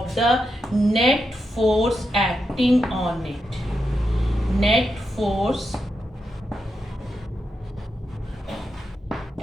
the net force acting on it.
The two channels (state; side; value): normal; both; correlation 0.86